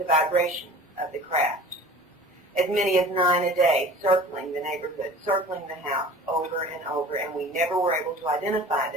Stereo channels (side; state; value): both; normal; correlation 0.42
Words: vibration of the craft. As many as 9 a day, circling the neighborhood, circling the house over and over, and we never were able to identify